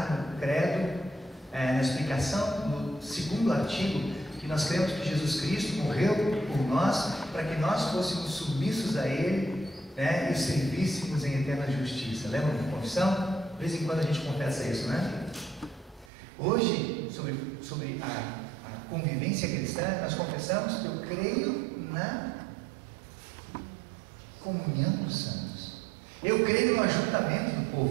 no credo, na explicação, no segundo artigo, que nós cremos que Jesus Cristo morreu por nós, para que nós fôssemos submissos a Ele, né, e servíssemos em eterna justiça. Lembra da confissão? De vez em quando a gente confessa isso, né? Hoje, sobre a convivência cristã, nós confessamos que eu creio na comunhão dos santos. Eu creio no ajuntamento do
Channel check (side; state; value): left; drops out; at 16.1 s